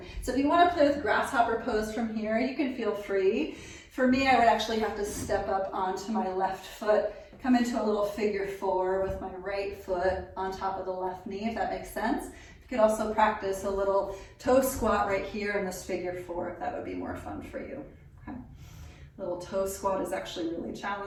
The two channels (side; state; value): both; identical; correlation 1.00